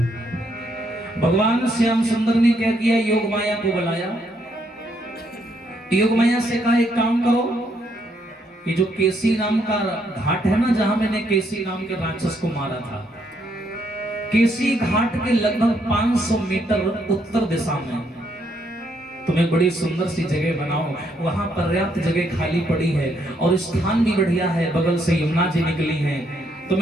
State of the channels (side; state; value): both; normal; correlation 0.73